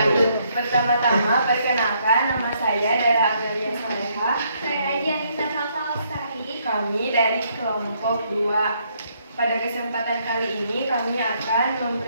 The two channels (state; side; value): inverted; both; correlation -0.71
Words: Pertama-tama, perkenalkan, nama saya Dara Amelia Saleha. Saya Aji Anissa Salsa Lestari. Kami dari kelompok 2. Pada kesempatan kali ini kami akan